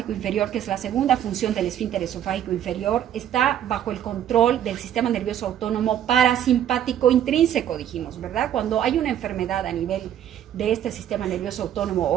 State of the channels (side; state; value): left; quieter; 10.5 dB